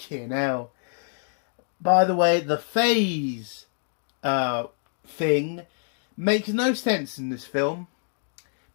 hell. By the way, the phase thing makes no sense in this film,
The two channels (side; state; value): right; silent; 61 dB below the other